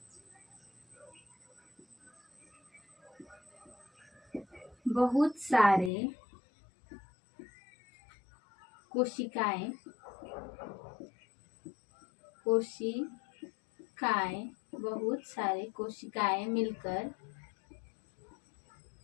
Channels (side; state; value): right; drops out; at 5.9 s